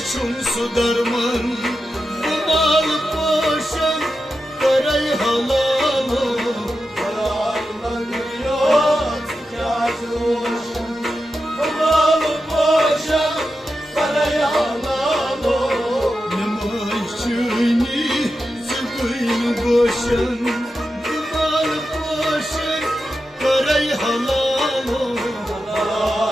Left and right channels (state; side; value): normal; both; correlation 0.90